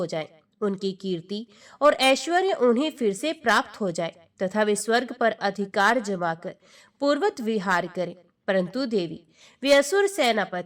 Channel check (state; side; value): identical; both; correlation 1.00